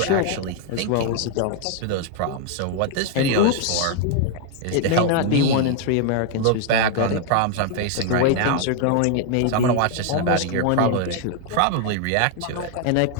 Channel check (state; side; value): different; both; correlation 0.00